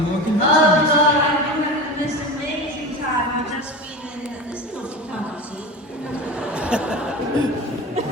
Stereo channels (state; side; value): normal; both; correlation 0.29